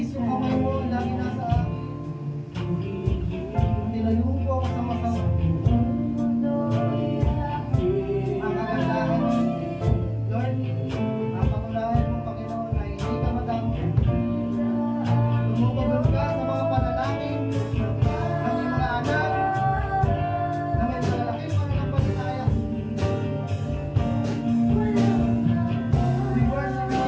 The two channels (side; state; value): both; identical; correlation 1.00